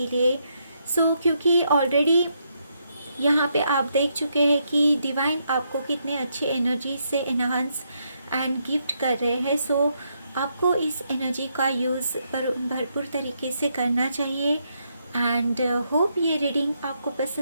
लिए। सो क्योंकि ऑलरेडी यहाँ पे आप देख चुके हैं कि डिवाइन आपको कितने अच्छे एनर्जी से एनहांस एंड गिफ्ट कर रहे हैं। सो आपको इस एनर्जी का यूज़ भरपूर तरीके से करना चाहिए। एंड होप ये रीडिंग आपको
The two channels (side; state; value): both; inverted; correlation -0.78